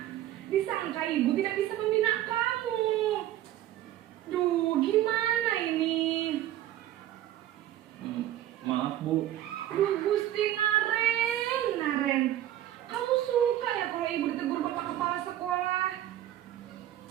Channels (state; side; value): quieter; left; 12.9 dB